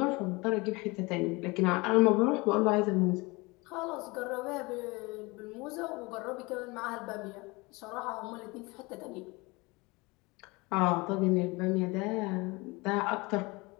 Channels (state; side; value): quieter; right; 24.8 dB